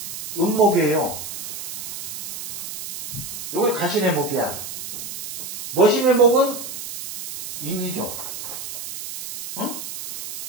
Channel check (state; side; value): noise; right; hiss, 8 dB below the sound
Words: 음목이에요. 요게 가신의 목이야. 머신의 목은 인이죠. 응?